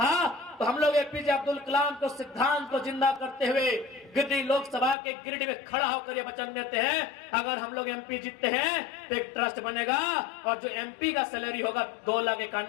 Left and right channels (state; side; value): drops out; right; at 5.0 s